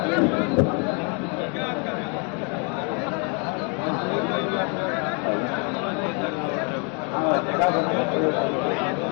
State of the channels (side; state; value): right; quieter; 35.5 dB